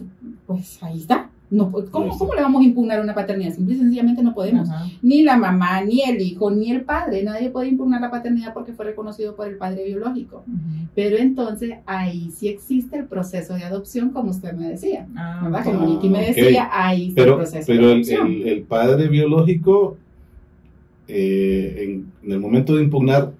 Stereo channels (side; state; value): both; identical; correlation 1.00